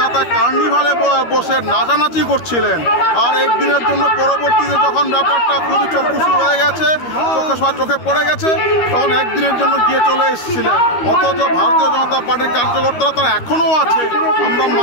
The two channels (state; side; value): late; right; 13 ms